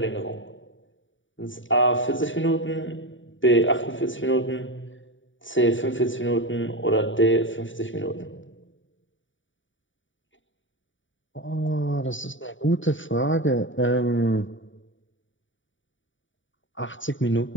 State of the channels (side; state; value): right; late; 0.56 ms